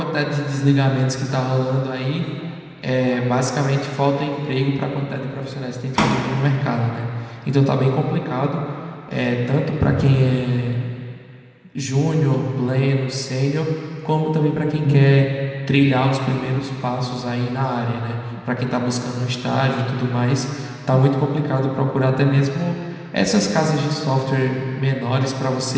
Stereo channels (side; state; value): both; identical; correlation 1.00